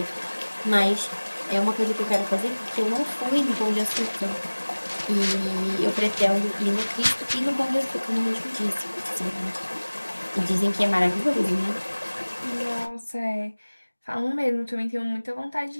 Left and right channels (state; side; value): inverted; both; correlation -1.00